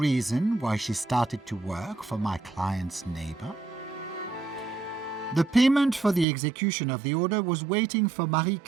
why she started to work for my client's neighbor? The payment for the execution of the order was waiting for Marie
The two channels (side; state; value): left; drops out; at 6.2 s